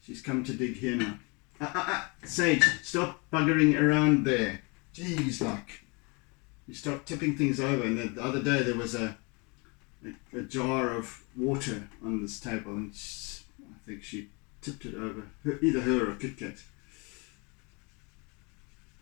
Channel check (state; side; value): quieter; right; 30.3 dB